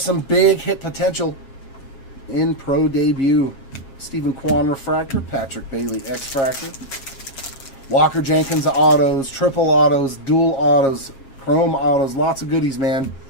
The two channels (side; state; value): right; late; 7.4 ms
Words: big hit potential in Pro debut. Stephen Kwan refractor, Patrick Bailey X-Fractor. Walker Jenkins autos, triple autos, dual autos, chrome autos, lots of goodies, man.